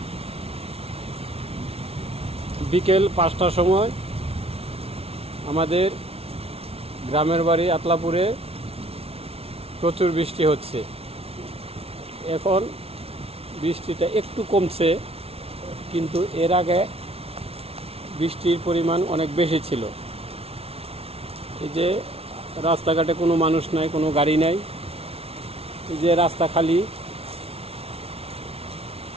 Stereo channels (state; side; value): late; left; 0.29 ms